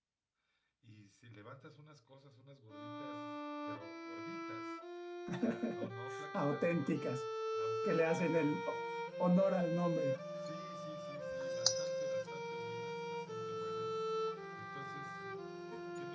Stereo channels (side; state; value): both; identical; correlation 1.00